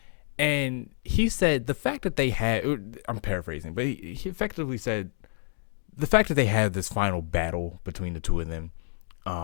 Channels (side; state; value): right; silent; 59 dB below the other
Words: and he said the fact that they had, I'm paraphrasing, but he effectively said the fact that they had this final battle between the two of them,